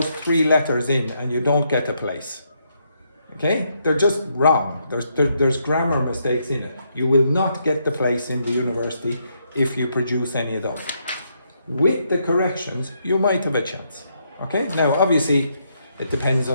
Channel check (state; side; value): inverted; both; correlation -0.76